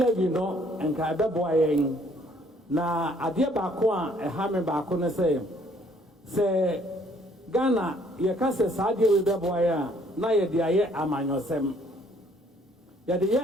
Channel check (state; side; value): normal; both; correlation 0.62